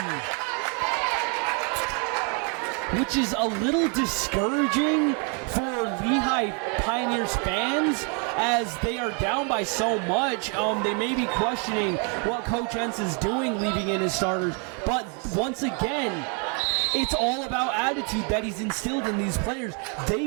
which is a little discouraging for Lehi Pioneers fans, as they are down by so much. They may be questioning what Coach Entz is doing leaving in his starters, but once again, it's all about attitude that he's instilled in these players.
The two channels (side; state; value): left; quieter; 37.3 dB